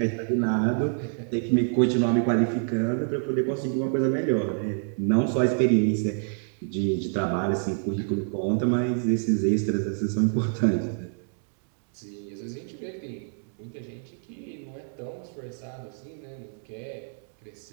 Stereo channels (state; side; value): silent; left; 60 dB below the other